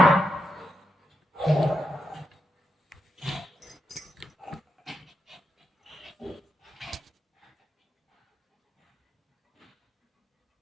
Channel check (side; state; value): both; normal; correlation 0.83